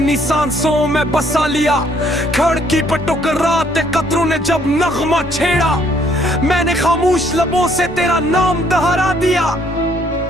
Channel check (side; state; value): both; normal; correlation 0.65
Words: सांसों में बसा लिया। खिड़की पर टकराते कतरों ने जब नगमा छेड़ा, मैंने खामोश लबों से तेरा नाम दोहरा दिया।